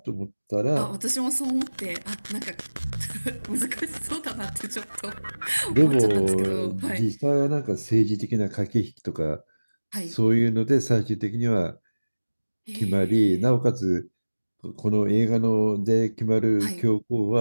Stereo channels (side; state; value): both; inverted; correlation -1.00